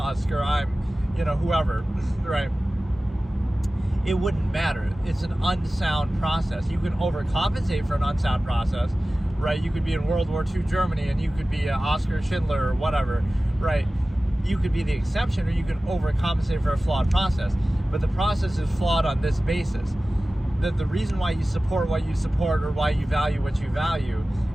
or I'm, you know, whoever, right? It wouldn't matter. It's an unsound process. You can overcompensate for an unsound process, right? You could be in World War II Germany and you could be Oscar Schindler or whatever, right? You could be the exception, or you can overcompensate for a flawed process. But the process is flawed on this basis. That the reason why you support what you support or why you value what you value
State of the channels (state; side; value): normal; both; correlation 0.96